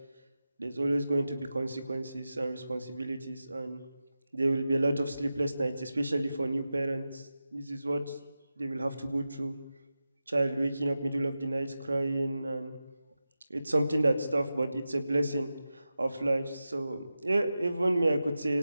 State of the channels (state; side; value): inverted; both; correlation -0.93